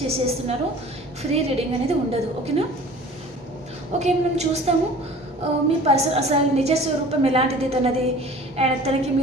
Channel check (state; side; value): noise; left; hum, 24 dB below the sound